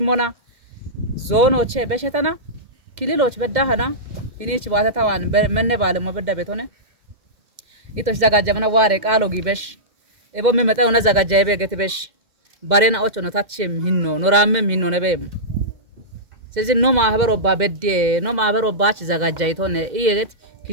ሞና ዞኖቼ በሸተና ክልሎች በዳህና ሂኒች ባተታዋን መነ ባለሞ በዳ ቤቶነ ኢቶሺ ዘጋጀመና ዋሬ ቃሎ ጊበሽ ኤቦ መመጣው ነ ዘጋጃ ይበገት በሽ ባሬና ኦቾ ነው ታችም ሂኖ ኖራምም ሂኖ ነበም ስለዚህ ኖ ማህበሮ ባበዴ ኖ ማህበሮ ባች ዘጋጃ ይቶነ ኢየት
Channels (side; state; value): left; late; 2.1 ms